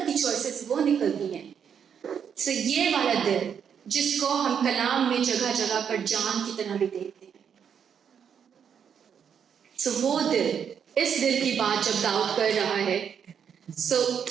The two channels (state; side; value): quieter; left; 7.7 dB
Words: کی چوائسیز وہ نکلتی ہیں. سو یہ والا دل جس کو ہم کلام میں جگہ جگہ پر جان کی طرح بھی دیکھتے ہیں. سو وہ دل، اس دل کی بات جب داؤد کر رہا ہے، سو